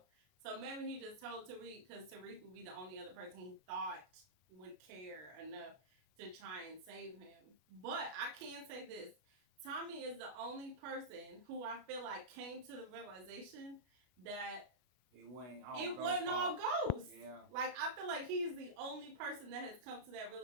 So maybe he just told Tariq because Tariq would be the only other person he thought would care enough to try and save him. But I can say this. Tommy is the only person who I feel like came to the realization that it wasn't all it ghost wasn't all fault. ghosts. Yeah. Like, I feel like he's the only person that has come to that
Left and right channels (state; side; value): late; left; 32 ms